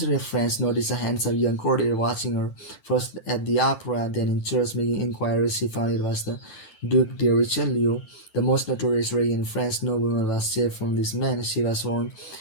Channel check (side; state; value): right; late; 9.2 ms